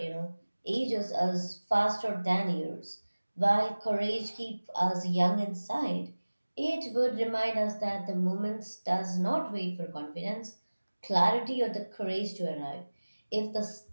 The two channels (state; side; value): inverted; both; correlation -1.00